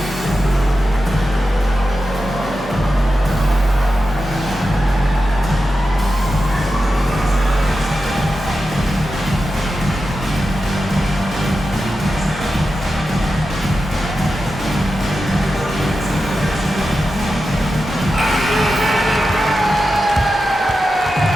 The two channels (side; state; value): both; normal; correlation 0.91